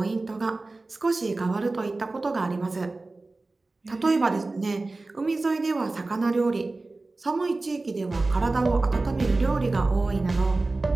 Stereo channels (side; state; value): left; quieter; 3.3 dB